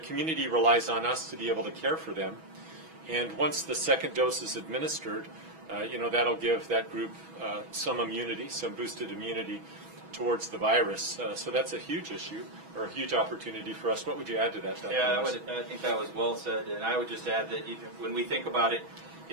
relies on us to be able to care for them. And once the second dose is administered, that'll give that group some immunity, some boosted immunity. towards the virus. So that's a huge issue or a huge opportunity for us. What would you add to that, Dr. Yeah, Anderson? I think that was well said, and I would just add that when we think about it,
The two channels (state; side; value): late; left; 6.2 ms